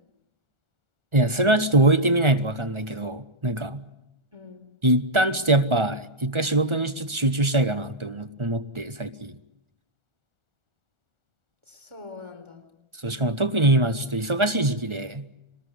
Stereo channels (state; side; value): late; left; 1.4 ms